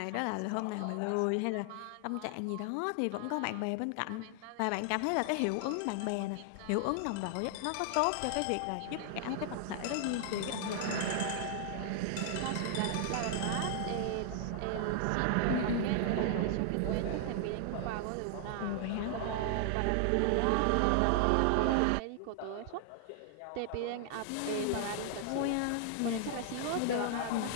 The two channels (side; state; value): both; different; correlation 0.00